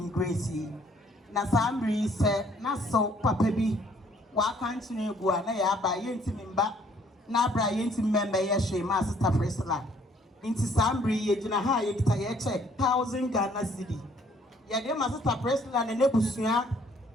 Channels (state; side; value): normal; both; correlation 0.62